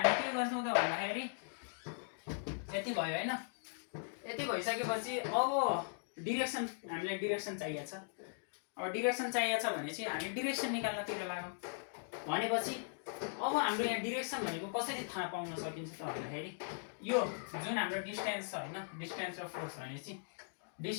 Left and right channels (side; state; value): right; silent; digital silence